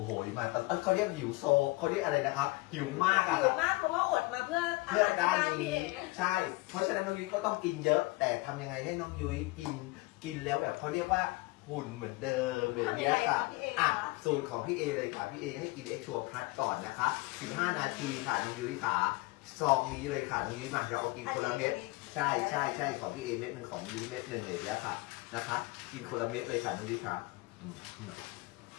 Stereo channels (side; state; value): right; quieter; 23.7 dB